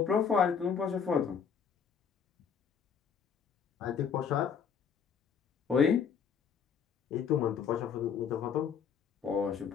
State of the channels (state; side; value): quieter; right; 7.0 dB